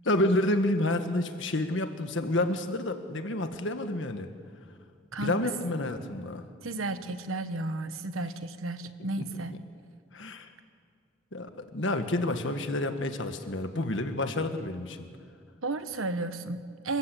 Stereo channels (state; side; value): normal; both; correlation 0.36